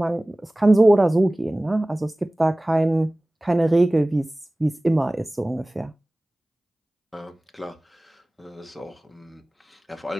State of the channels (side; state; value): both; normal; correlation 0.98